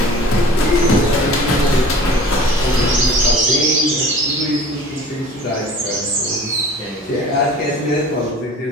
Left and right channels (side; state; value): both; normal; correlation 0.44